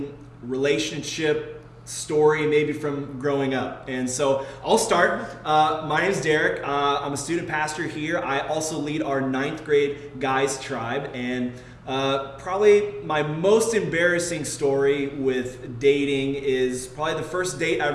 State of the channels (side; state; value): both; identical; correlation 1.00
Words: relationship story, maybe from growing up. And so I'll start. My name's Derek. I'm a student pastor here. I also lead our 9th grade guys tribe. And probably my most embarrassing story with dating is probably the first date I